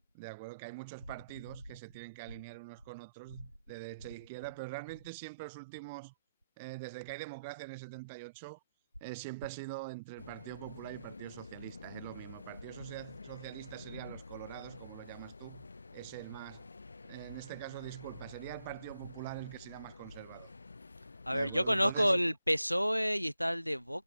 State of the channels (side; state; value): both; inverted; correlation -0.85